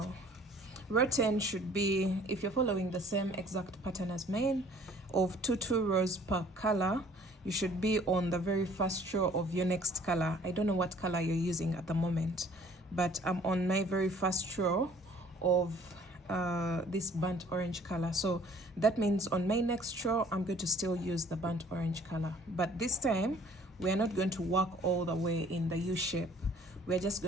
Row 10 should be, if you're following the same exact pattern as mine, of 2 rows per color, you should be on the very first row of your next color. I don't know what color you're using at the moment, but I'm on my very first row of this burnt orange color. So that means on my next row I'm going to still use the burnt orange color, but this time we are not going to work all the way in the U shape. We're just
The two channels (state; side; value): normal; both; correlation 0.55